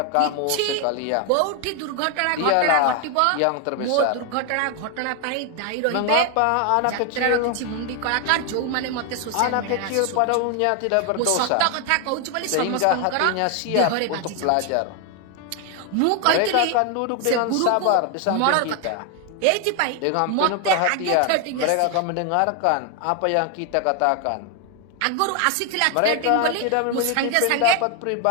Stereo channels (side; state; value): both; different; correlation 0.01